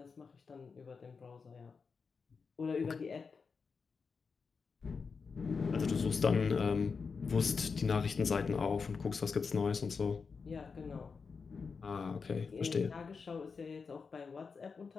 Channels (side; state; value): right; quieter; 5.2 dB